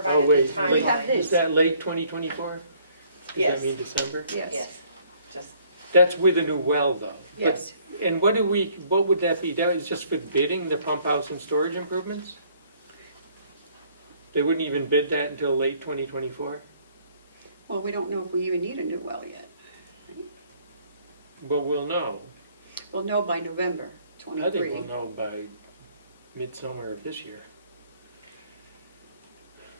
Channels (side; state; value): both; inverted; correlation -0.62